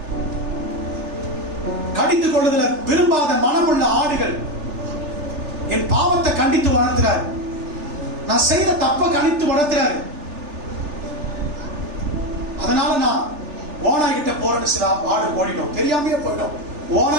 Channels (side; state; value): left; late; 3.4 ms